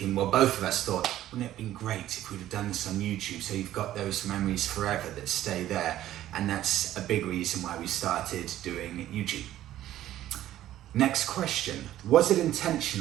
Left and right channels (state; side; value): quieter; left; 13.2 dB